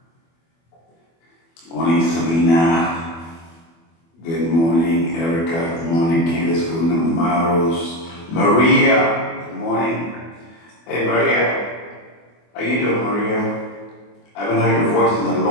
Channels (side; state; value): right; late; 24 ms